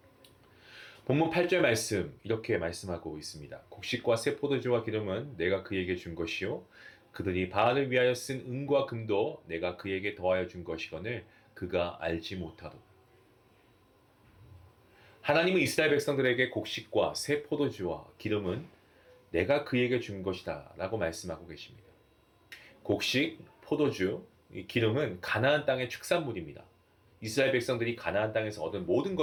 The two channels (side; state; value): both; identical; correlation 1.00